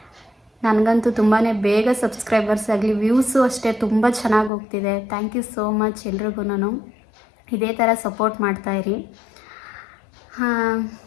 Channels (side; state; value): right; drops out; at 4.5 s